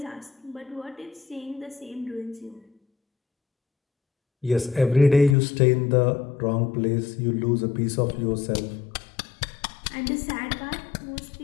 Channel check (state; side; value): drops out; right; at 5.4 s